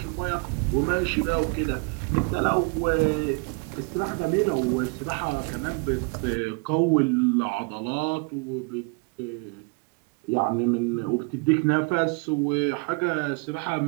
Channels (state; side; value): quieter; left; 32.7 dB